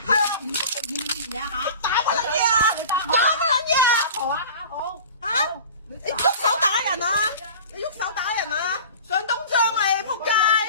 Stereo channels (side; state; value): both; inverted; correlation -0.39